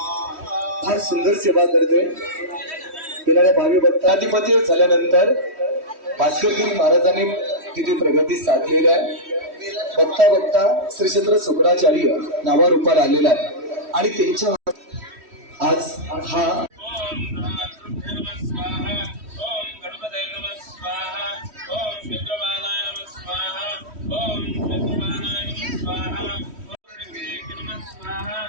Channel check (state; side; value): late; left; 3.1 ms